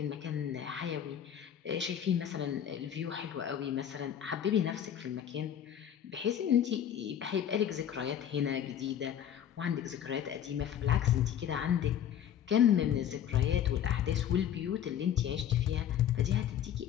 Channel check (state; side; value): quieter; right; 9.8 dB